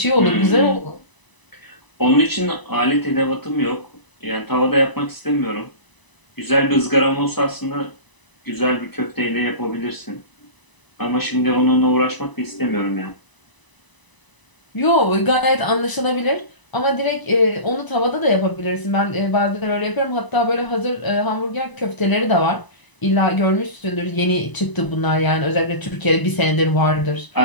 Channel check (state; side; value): late; right; 1.0 ms